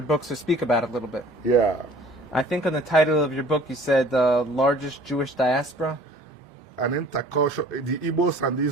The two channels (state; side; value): normal; both; correlation 0.50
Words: books speak about a little bit. Yeah. I think on the title of your book you said the largest Jewish diaspora. The Igbos and